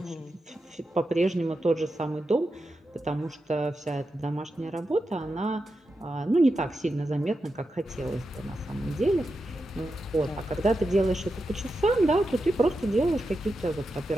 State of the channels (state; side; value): normal; both; correlation 0.89